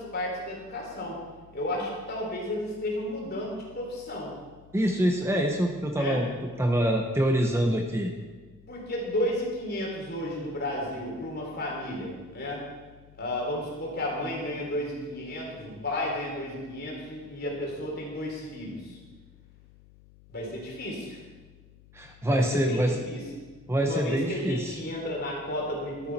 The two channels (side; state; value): left; noise; hum, 23 dB below the sound